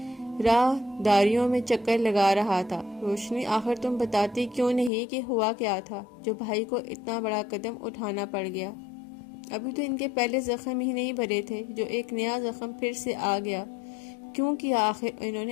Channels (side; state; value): right; drops out; at 4.9 s